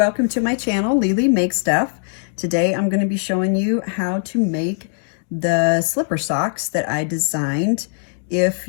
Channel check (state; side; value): silent; right; digital silence